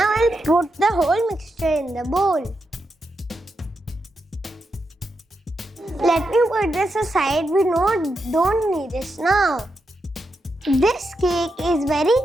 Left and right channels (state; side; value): normal; both; correlation 0.85